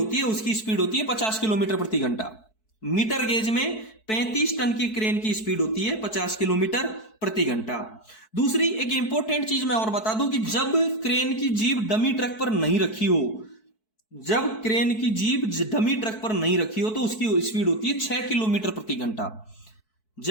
है, उसकी स्पीड होती है 50 किलोमीटर प्रति घंटा। मीटर गेज में 35 टन की क्रेन की स्पीड होती है 50 किलोमीटर प्रति घंटा। दूसरी एक इंपॉर्टेंट चीज मैं और बता दूं कि जब क्रेन की जीभ डमी ट्रक पर नहीं रखी हो, जब क्रेन की जीभ डमी ट्रक पर नहीं रखी हो तो उसकी स्पीड होती है 6 किलोमीटर प्रति घंटा।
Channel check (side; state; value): right; late; 4.6 ms